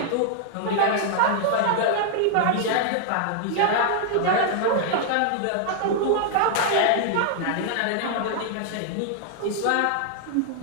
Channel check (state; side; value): different; both; correlation -0.01